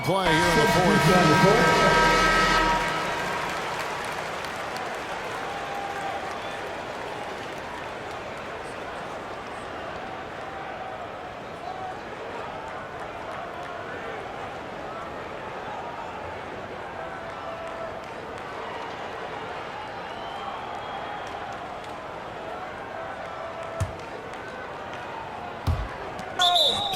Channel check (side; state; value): both; identical; correlation 1.00